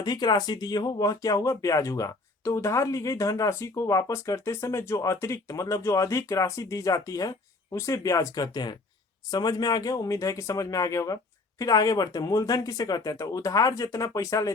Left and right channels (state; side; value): quieter; right; 3.3 dB